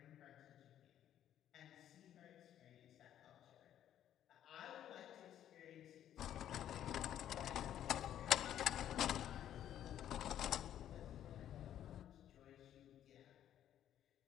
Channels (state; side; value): quieter; right; 11.0 dB